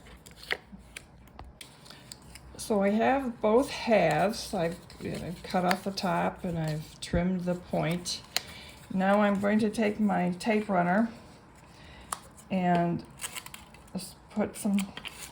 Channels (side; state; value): both; identical; correlation 1.00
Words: So I have both halves. I've cut off the top and I've trimmed the point. Now I'm going to take my tape runner and just put some